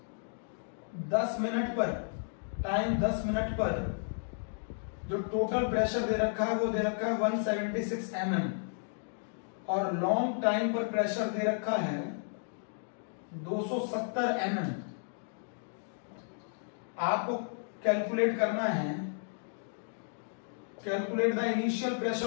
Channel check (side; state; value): right; silent; digital silence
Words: 10 मिनट पर, टाइम 10 मिनट पर जो टोटल प्रेशर दे रखा है वो दे रखा है 176 mm, और लॉन्ग टाइम पर प्रेशर दे रखा है 270 mm। आपको कैलकुलेट करना है, calculate the initial pressure